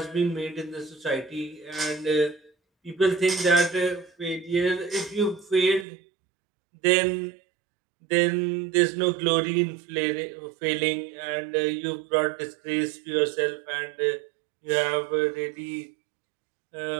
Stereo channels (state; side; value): drops out; left; at 5.9 s